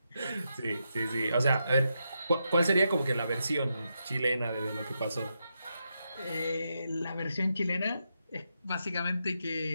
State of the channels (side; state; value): both; inverted; correlation -0.84